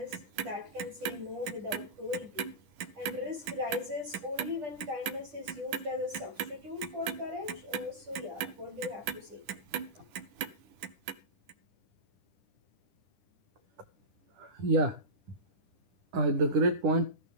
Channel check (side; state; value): left; late; 9.9 ms